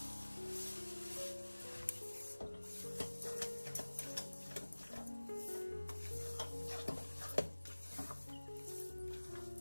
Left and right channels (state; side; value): inverted; both; correlation -1.00